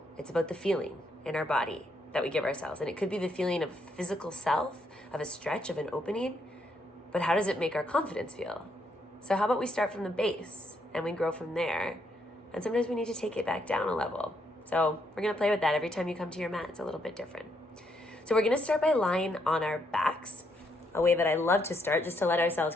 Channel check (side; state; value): both; normal; correlation 0.75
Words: it's about the feeling in our body that we give ourselves. And it could be the feeling of physical self, of a stretch, of an opening, but how does it make our confidence feel? So how about we start from the base and we grow from there? And sometimes we need to take it back down a level. So we're gonna play with that every time you come to your mat. It's a little bit different. So we're gonna start by lying on our backs, a way that I love to start, just to let ourselves